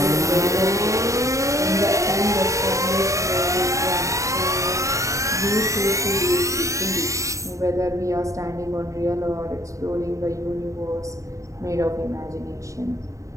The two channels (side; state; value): left; late; 0.15 ms